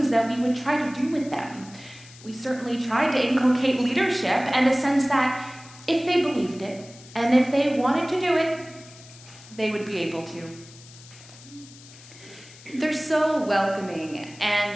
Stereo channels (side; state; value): left; noise; hiss, 20 dB below the sound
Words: that we would try to do with them. We certainly tried to inculcate leadership and a sense that if they believed it, and if they wanted to do it, they would be able to. They're so welcoming,